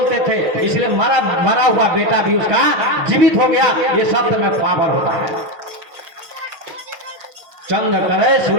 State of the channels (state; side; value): late; left; 6.3 ms